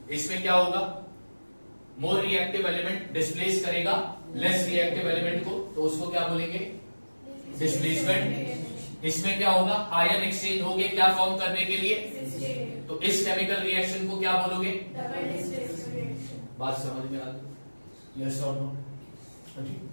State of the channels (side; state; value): both; inverted; correlation -1.00